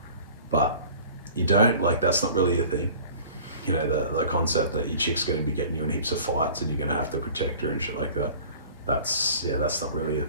But you don't, like, that's not really a thing. You know, the concept that your chick's going to be getting you in heaps of fights and you're going to have to protect her and shit like that. That's not really a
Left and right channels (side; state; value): both; inverted; correlation -0.45